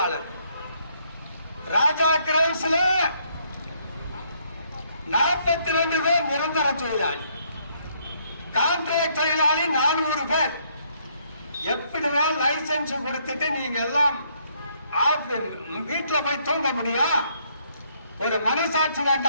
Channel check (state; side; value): inverted; both; correlation -0.69